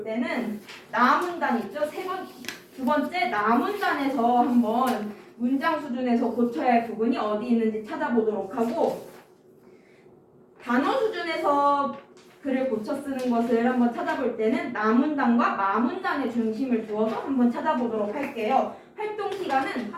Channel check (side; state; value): both; identical; correlation 1.00